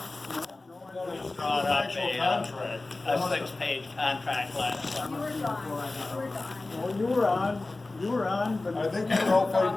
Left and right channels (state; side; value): quieter; right; 3.2 dB